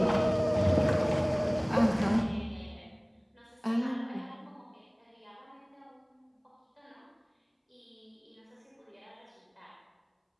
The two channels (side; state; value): both; identical; correlation 1.00